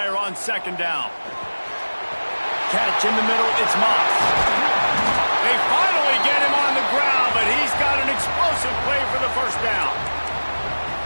on second down. Catch in the middle, it's Moss. They finally get him on the ground, but he's got an explosive play for the first down.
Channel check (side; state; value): both; inverted; correlation -1.00